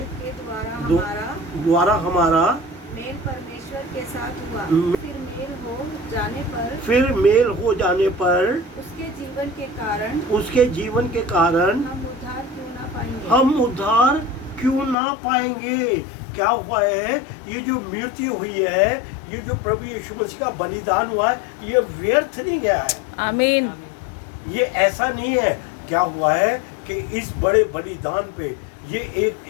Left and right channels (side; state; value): right; drops out; at 15.0 s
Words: द्वारा हमारा मेल परमेश्वर के साथ हुआ। हम्म। फिर मेल हो जाने पर उसके जीवन के कारण हम उद्धार क्यों ना पाएंगे। क्या हुआ है? ये जो मृत्यु हुई है, ये जो प्रभु यीशु मसीह का बलिदान हुआ है, ये व्यर्थ नहीं गया है। आमीन। ये ऐसा नहीं है। क्या हुआ है कि इस बड़े बलिदान पे ये